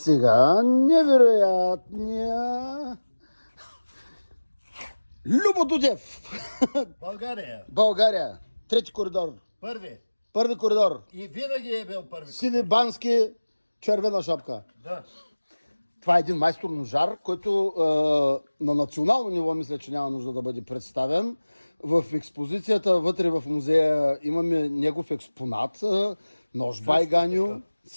невероятния Любо Дудев. България. България. Трети коридор. Първи. Първи коридор. И винаги е бил първи. Сиви бански, червена шапка. Да. Това е един майстор ножар, който на национално ниво мисля, че няма нужда да бъде представен. В експозицията вътре в музея имаме негов експонат, нож Байганю.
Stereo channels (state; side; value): inverted; both; correlation -1.00